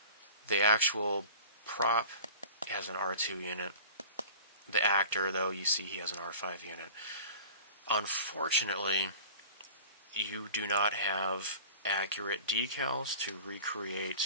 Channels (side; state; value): both; inverted; correlation -0.39